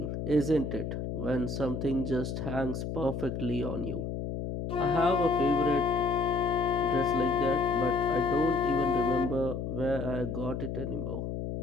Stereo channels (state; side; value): noise; left; hum, 4 dB below the sound